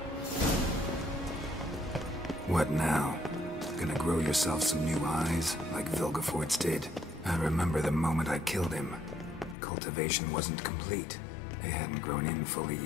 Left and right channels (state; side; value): drops out; right; at 9.6 s